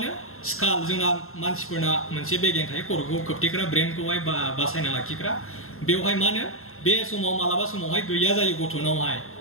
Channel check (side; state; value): right; late; 0.62 ms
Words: स्काल जोंना मानसिफोरना मोनसे बेगें थायो खर'खौ खोबथेग्रा ब्रेनखौहाय बासायना लाखिग्रा बेवहाय मा होनो बे समाव मालाबा समावहाय गैया जायो गथ'नावहाय